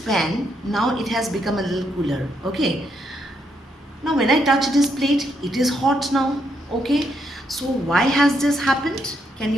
now it has become a little cooler. Okay, now when I touch this plate, it is hot now. Okay, so why has this happened? Can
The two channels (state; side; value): normal; both; correlation 0.77